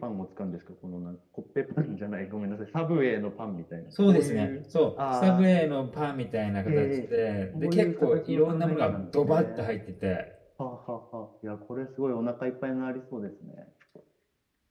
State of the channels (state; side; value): identical; both; correlation 1.00